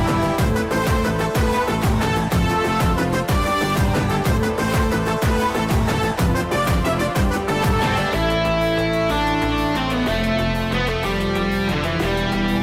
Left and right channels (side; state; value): both; identical; correlation 1.00